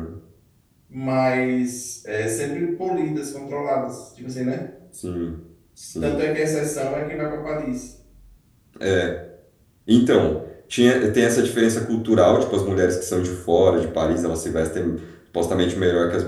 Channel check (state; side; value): identical; both; correlation 1.00